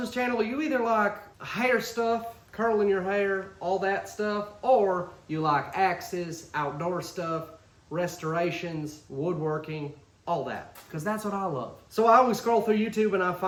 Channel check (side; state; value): both; identical; correlation 1.00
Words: channel, you either like hair stuff, curling your hair, all that stuff, or you like axes, outdoor stuff, restorations, woodworking, all that, because that's what I love. So I always scroll through YouTube and I